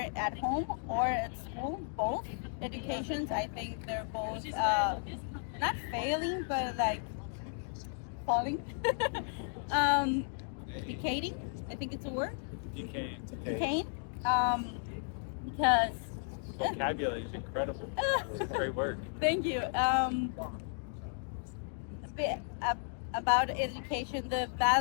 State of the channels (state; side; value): silent; right; 55 dB below the other